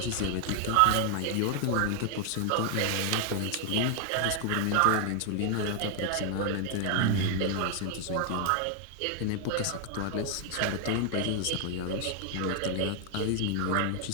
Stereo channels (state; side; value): different; both; correlation 0.00